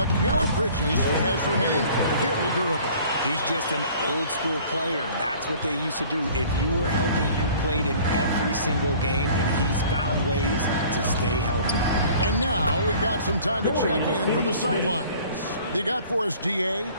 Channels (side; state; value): both; inverted; correlation -0.50